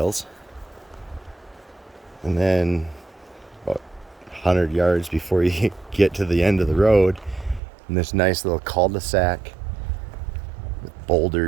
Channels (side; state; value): left; drops out; at 7.6 s